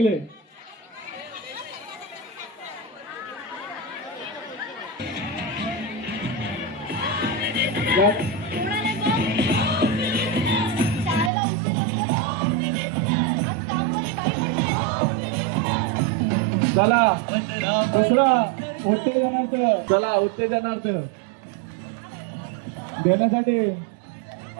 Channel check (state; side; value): drops out; left; at 11.3 s